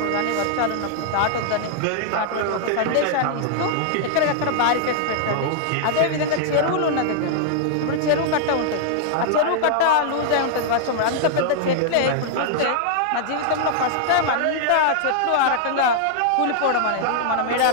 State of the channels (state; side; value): different; both; correlation -0.01